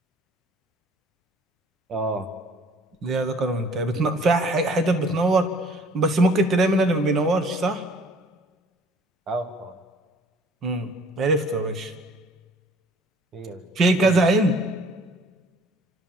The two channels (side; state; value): both; normal; correlation 0.54